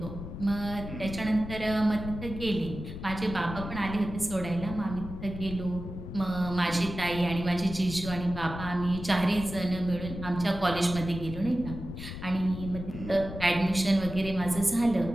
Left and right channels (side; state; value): left; noise; rumble, 9 dB below the sound